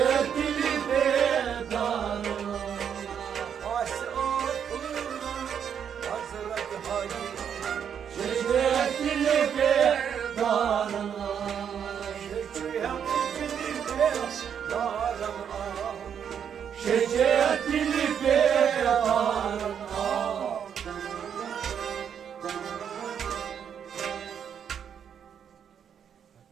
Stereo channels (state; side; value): quieter; left; 8.1 dB